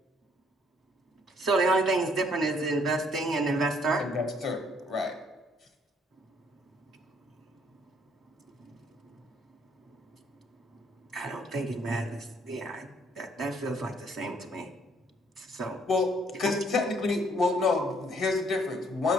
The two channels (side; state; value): both; normal; correlation 0.65